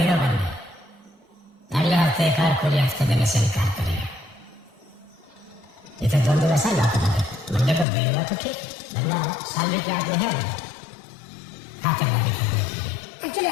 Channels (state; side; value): drops out; right; at 7.9 s